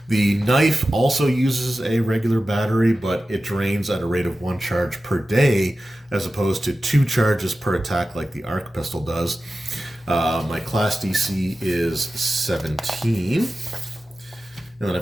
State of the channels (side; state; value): both; normal; correlation 0.94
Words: The knife also uses a regular battery, but it drains at a rate of 1 charge per day, as opposed to 2 charges per attack like the arc pistol does. My class DC is 17. And then